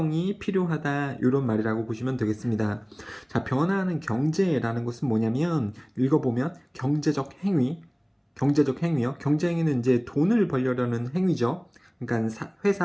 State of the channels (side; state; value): both; identical; correlation 1.00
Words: 필요하다. 이런 말이라고 보시면 되겠습니다. 자, 변화하는 경제라는 것은 뭐냐면 읽어보면 경제적 행위요. 경제 행위는 이제 돈을 벌려는 행위죠. 그러니까